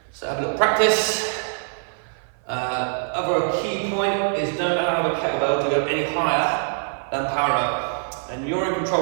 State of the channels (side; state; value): left; silent; 55 dB below the other